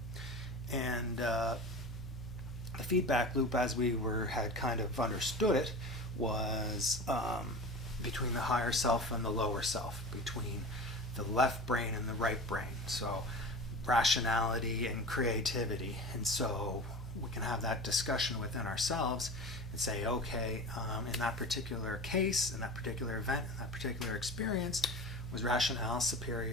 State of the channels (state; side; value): normal; both; correlation 0.33